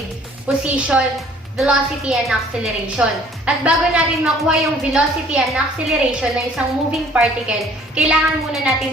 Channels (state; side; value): normal; both; correlation 0.55